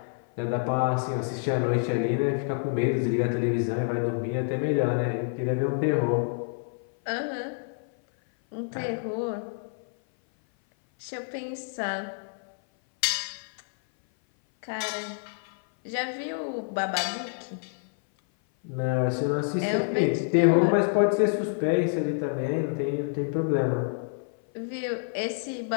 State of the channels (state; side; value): silent; right; 57 dB below the other